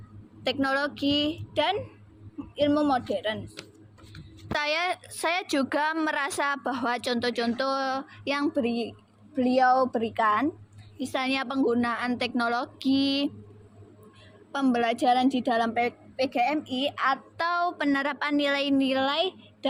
teknologi, dan ilmu modern. Saya juga merasa bahwa contoh-contoh yang beliau berikan, misalnya penggunaan teknologi, pembelajaran di dalam PGMI, atau penerapan nilai-nilai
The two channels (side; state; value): both; identical; correlation 1.00